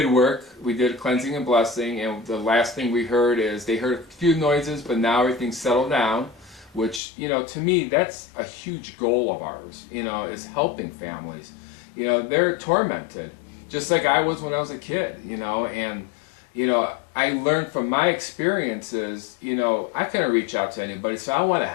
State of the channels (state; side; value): drops out; right; at 7.0 s